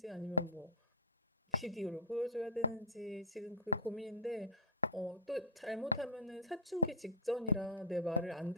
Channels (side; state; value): both; normal; correlation -0.06